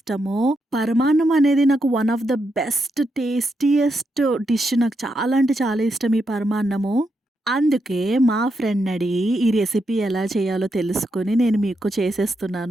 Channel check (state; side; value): normal; both; correlation 0.82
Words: పరమాన్నం అనేది నాకు one of the best tastiest dish. నాకు చాలా అంటే చాలా ఇష్టం ఈ పరమాన్నము. అందుకే మా ఫ్రెండ్ అడిగి ఈ రెసిపీ ఎలా చేయాలో తెలుసుకొని నేను మీకు